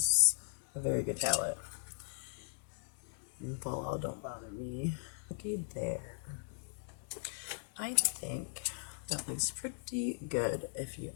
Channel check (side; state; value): right; silent; digital silence